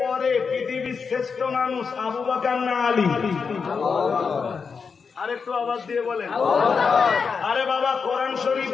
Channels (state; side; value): quieter; right; 5.5 dB